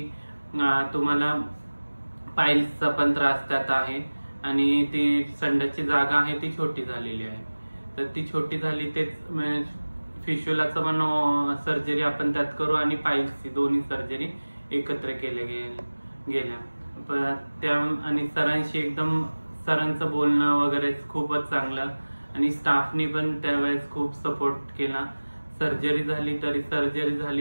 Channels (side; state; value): both; inverted; correlation -1.00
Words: तुम्हाला पाईल्सचा पण त्रास त्यात आहे आणि ती संडासची जागा आहे ती छोटी झालेली आहे, तर ती छोटी झाली तेच फिश्यूलाचं पण सर्जरी आपण त्यात करू आणि पाईल्सची दोन्ही सर्जरी एकत्र केल्या गेल्या। त्या आणि सरांचं बोलणं वगैरे खूपच चांगलं आणि स्टाफनी पण त्यावेळेस खूप सपोर्ट केला। सर्जरी झाली तरी